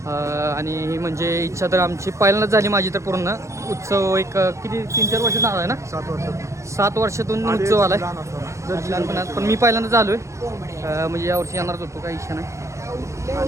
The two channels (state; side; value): late; left; 0.14 ms